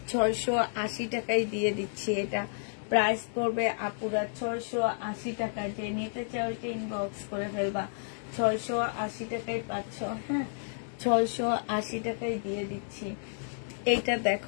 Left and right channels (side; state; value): right; silent; 57 dB below the other